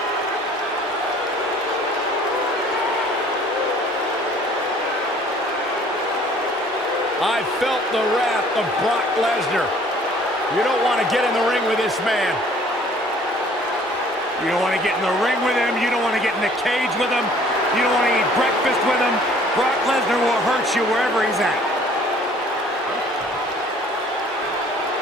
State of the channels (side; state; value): both; normal; correlation 0.55